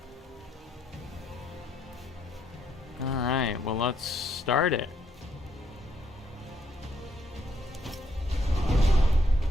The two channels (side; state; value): both; normal; correlation 0.73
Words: Alright, well, let's start it.